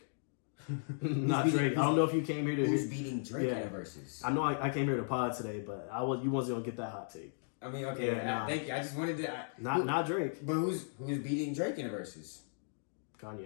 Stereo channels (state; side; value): silent; right; digital silence